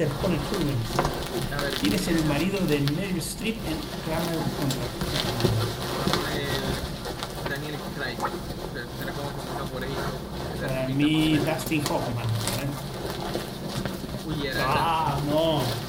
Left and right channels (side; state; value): both; identical; correlation 1.00